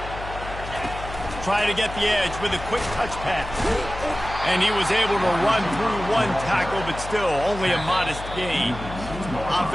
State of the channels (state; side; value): noise; left; hum, 11 dB below the sound